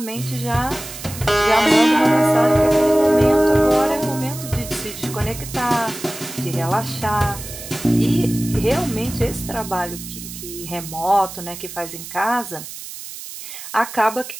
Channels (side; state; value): right; noise; hiss, 12 dB below the sound